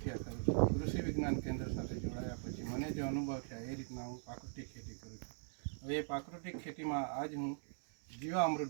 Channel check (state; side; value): silent; left; digital silence